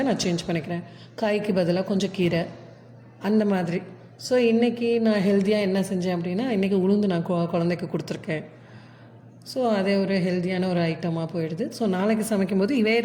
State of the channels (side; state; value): both; identical; correlation 1.00